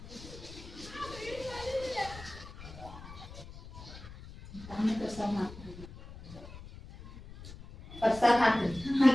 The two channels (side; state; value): left; noise; rumble, 15 dB below the sound